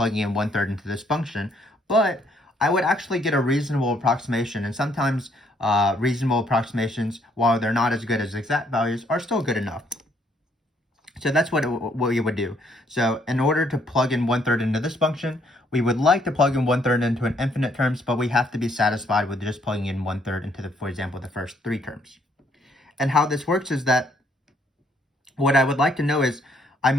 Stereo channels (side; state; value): both; normal; correlation 0.68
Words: in 1/3 into this function, but I would actually get a reasonable approximation. And sometimes reasonable approximations, while they're not as good as exact values, are still good enough. So that's what we would do. So in order to plug in 1/3 into this function, we would like to plug in 1/3 into an infinite terms, but we have to be satisfied with just plugging in 1/3 into for example, the first 3 terms. And how this works is that what I would like to know is I